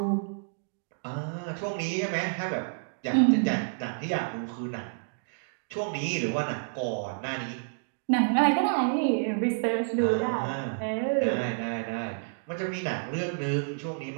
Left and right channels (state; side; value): silent; left; digital silence